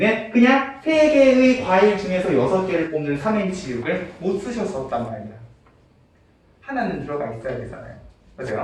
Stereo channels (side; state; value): both; identical; correlation 1.00